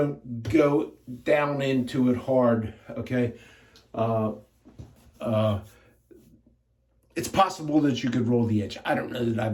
go down into it hard, okay? It's possible that you could roll the edge. I don't know that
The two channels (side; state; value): both; identical; correlation 1.00